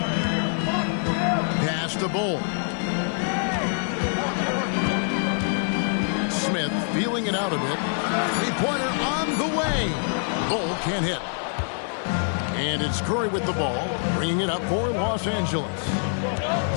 Pass to Bull. Smith feeling it out a bit. Three-pointer on the way. Bull can't hit. And it's Curry with the ball, bringing it up for Los Angeles.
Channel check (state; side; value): silent; right; 62 dB below the other